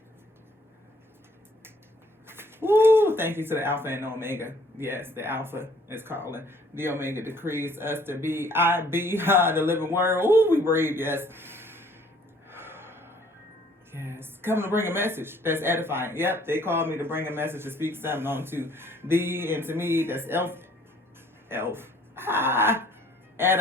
Woo! Thank you to the Alpha and Omega. Yes, the Alpha is calling. The Omega decrees us to be. I be the living word. Ooh, we breathe. Yes. Yes. Come to bring a message that's edifying. Yep, they called me to bring a message to speak something on to thee and to me. That's elf.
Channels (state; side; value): normal; both; correlation 0.59